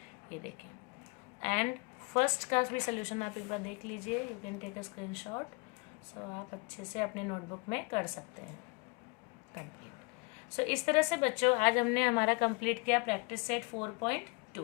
ये देखिए। एंड फर्स्ट का भी सोल्यूशन आप एक बार देख लीजिए, you can take a screenshot. So आप अच्छे से अपने नोटबुक में कर सकते हैं कंप्लीट। सो इस तरह से बच्चों आज हमने हमारा कंप्लीट किया प्रैक्टिस सेट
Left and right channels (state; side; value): quieter; right; 30.9 dB